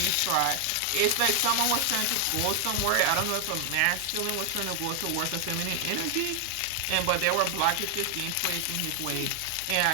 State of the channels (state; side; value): different; both; correlation 0.00